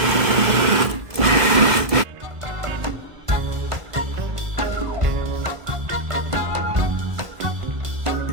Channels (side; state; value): left; late; 1.2 ms